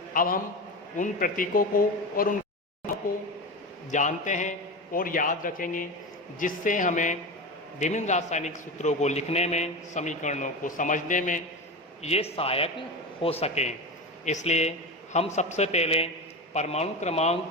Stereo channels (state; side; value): normal; both; correlation 0.23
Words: अब हम उन प्रतीकों को और उन नामों को जानते हैं और याद रखेंगे, जिससे हमें विभिन्न रासायनिक सूत्रों को लिखने में, समीकरणों को समझने में ये सहायक हो सकें। इसलिए हम सबसे पहले परमाणु